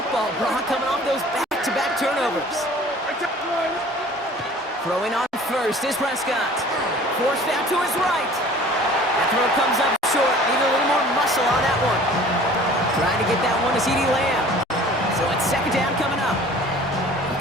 Brock, coming off those back-to-back turnovers. Throwing on first is Prescott. Forced out to his right. That throw comes up short. Need a little more muscle on that one. Trying to get that one to CeeDee Lamb. So it's 2nd down coming up.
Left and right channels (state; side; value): normal; both; correlation 0.48